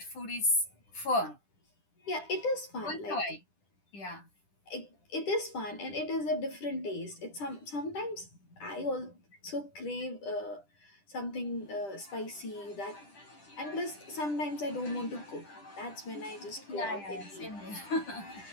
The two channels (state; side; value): late; right; 10 ms